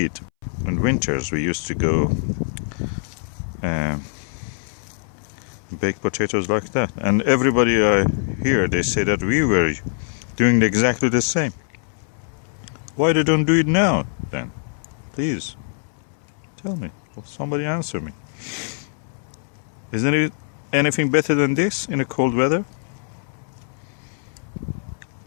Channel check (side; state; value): right; silent; 62 dB below the other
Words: in winters we used to go bake potatoes like that, and everybody I hear, they say that we were doing exactly the same. Why they don't do it now then? Please tell me. Somebody answer me. Isn't it anything better than this in a cold weather?